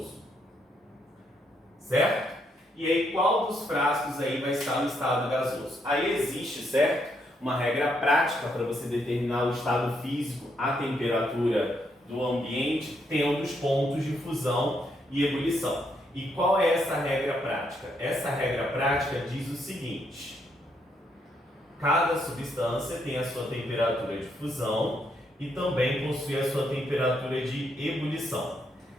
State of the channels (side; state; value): both; normal; correlation 0.76